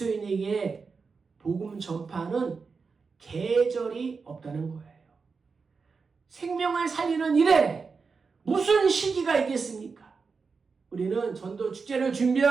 복음 전파는 계절이 없다는 거예요. 생명을 살리는 일에 무슨 시기가 있겠습니까? 우리는 전도 축제를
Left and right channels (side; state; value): left; quieter; 4.9 dB